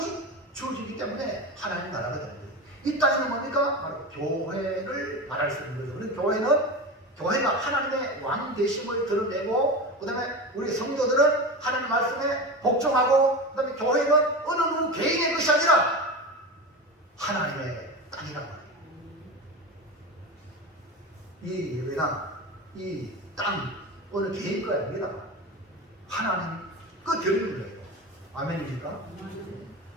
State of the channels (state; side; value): normal; both; correlation 0.25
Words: 주어지기 때문에 하나님 나라가 되는 거예요. 이 땅에는 뭡니까? 바로 교회를 말할 수 있는 거죠. 그래서 교회가 하나님의 왕 되심을 드러내고 그 다음에 우리 성도들은 하나님 말씀에 복종하고 그 다음에 교회는 어느 누구 개인의 것이 아니라 하나님의 땅이란 말이에요. 이 예배나 이 땅 어느 개인 거 아닙니다. 하나님 그 드리는 거예요. 아멘입니까?